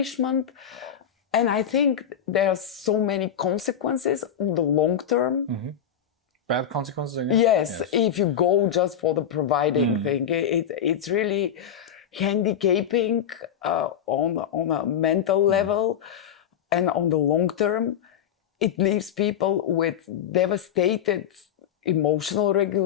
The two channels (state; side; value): quieter; right; 8.8 dB